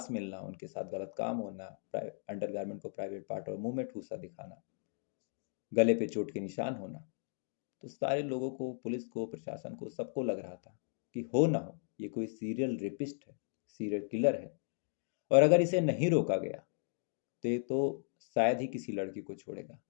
मिलना, उनके साथ गलत काम होना, अंडरगारमेंट को प्राइवेट पार्ट और मुंह में ठूसा दिखाना, गले पे चोट के निशान होना, तो सारे लोगों को, पुलिस को, प्रशासन को, सबको लग रहा था कि हो ना हो ये कोई सीरियल रेपिस्ट है, सीरियल किलर है, और अगर इसे नहीं रोका गया तो ये तो शायद ही किसी लड़की को छोड़ेगा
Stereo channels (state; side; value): silent; right; digital silence